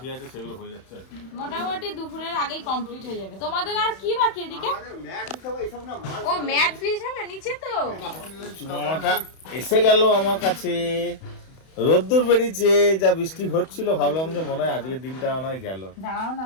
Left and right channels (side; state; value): right; late; 31 ms